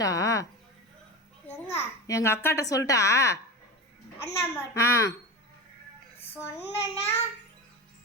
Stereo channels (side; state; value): both; normal; correlation 0.25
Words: எங்க அக்காட்ட சொல்லிட்டா? ஆ சொன்னா